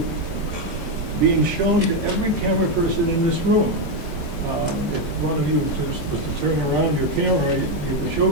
being shown to every camera person in this room. If one of you was to turn around your camera, you could show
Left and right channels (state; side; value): late; left; 20 ms